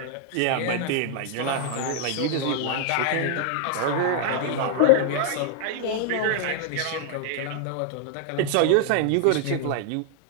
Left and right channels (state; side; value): different; both; correlation -0.01